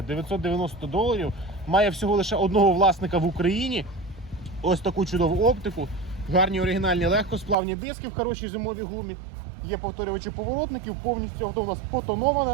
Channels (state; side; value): drops out; left; at 7.6 s